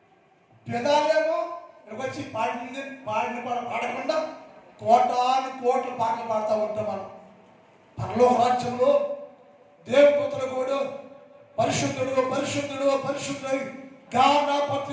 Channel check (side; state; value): both; identical; correlation 1.00